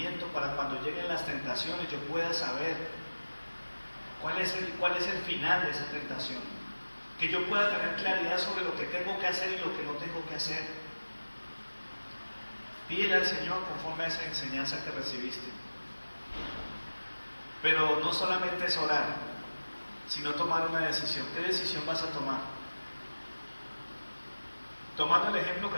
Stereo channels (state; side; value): inverted; both; correlation -1.00